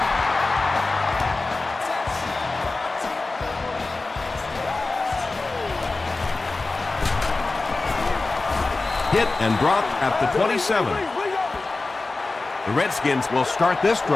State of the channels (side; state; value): right; quieter; 3.4 dB